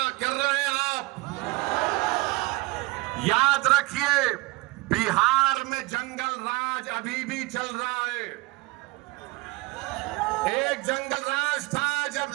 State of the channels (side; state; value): left; quieter; 22.6 dB